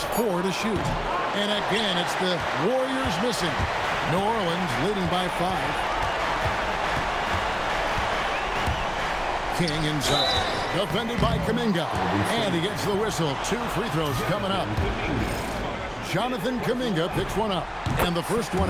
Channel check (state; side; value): identical; both; correlation 1.00